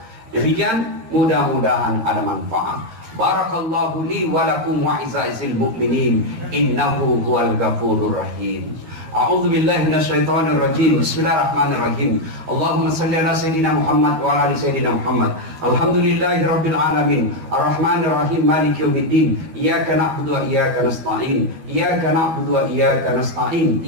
Demikian, mudah-mudahan ada manfaat. Barakallahu li wa lakum wa izza'il mu'minin, innahu huwal ghafurur rahim. A'udzu billahi minasyaitonir rajim. Bismillahirrahmanirrahim. Allahumma shalli ala sayidina Muhammad wa ala ali sayidina Muhammad. Alhamdulillahirabbil alamin. Arrahmanir rahim. Maliki yaumiddin. Iyyaka na'budu wa iyyaka nasta'in. Iyyaka na'budu wa iyyaka nasta'in.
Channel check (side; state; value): left; late; 12 ms